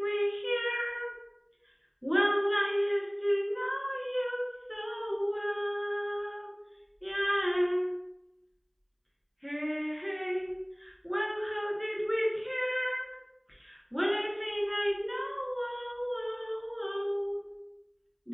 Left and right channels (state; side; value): identical; both; correlation 1.00